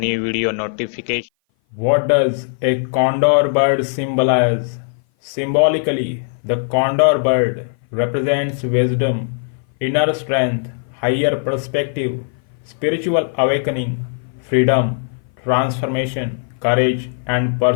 video notification. What does a condor bird symbolize? Symbolically, the condor bird represents wisdom, inner strength, higher perspective, spiritual awakening, freedom, transformation, courage, and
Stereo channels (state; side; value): silent; right; 58 dB below the other